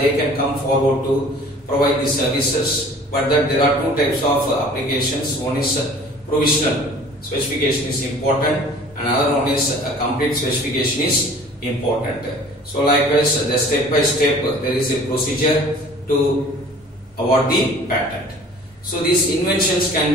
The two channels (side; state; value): both; normal; correlation 0.48